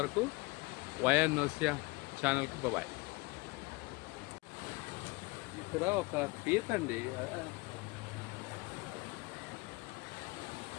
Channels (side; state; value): right; quieter; 24.7 dB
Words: వైఎన్ నోసియా ఛానల్కి బాయ్. ఇక్కడ ఒక పీత అండి,